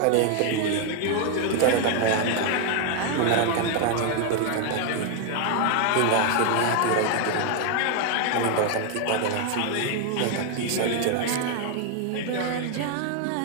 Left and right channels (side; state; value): both; different; correlation 0.00